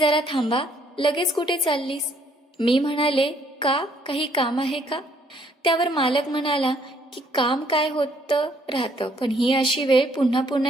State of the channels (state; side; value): normal; both; correlation 0.66